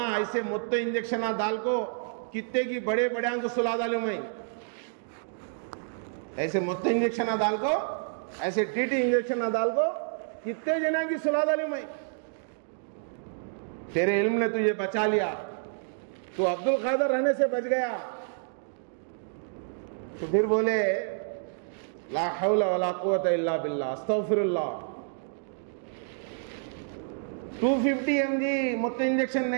ایسے مت انجیکشن دال کو کتے کی بڑے بڑے کو سلا ڈالوں میں، ایسے مت انجیکشن دال کو، ایسے ٹی ٹی انجیکشن دال کو کتنے جنا کی سلا ڈالوں میں. تیرے علم نے تجھے بچا لیا، تو عبد القادر رہنے سے بچ گیا. تو پھر بولے لا حول ولا قوت الا باللہ، استغفر اللہ. 250 mg مت انجیکشن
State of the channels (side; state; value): left; silent; digital silence